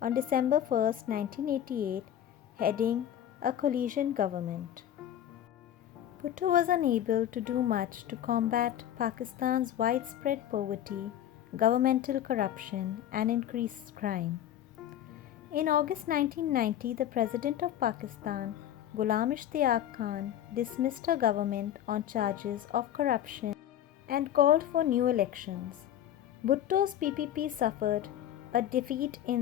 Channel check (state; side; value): quieter; right; 11.1 dB